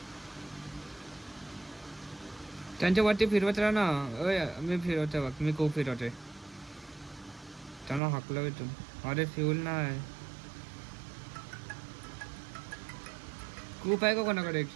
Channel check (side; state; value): left; drops out; at 8.0 s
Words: त्यांच्या वरती फिरवत राहा ना. मी फिरवतोय बघ. मी खूप फिरवतोय. त्यांना हाकलं इथून. अरे फ्यूल नाही. खूप आहे का कोणाकडे